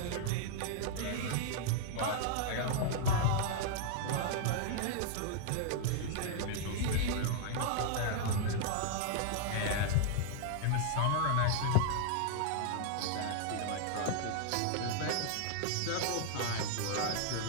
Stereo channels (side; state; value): both; different; correlation -0.01